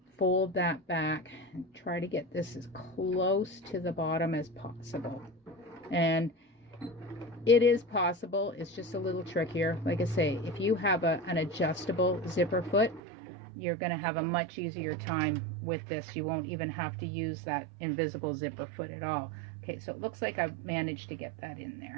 fold that back, and try to get this as close to the bottom as possible. And it is possible, it's just a little trickier. Like I say, if you have an adjustable zipper foot, you're going to have a much easier time with this. You won't even have to use that invisible zipper foot at all. Okay, so it looks like I've managed to get that in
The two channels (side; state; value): left; drops out; at 13.0 s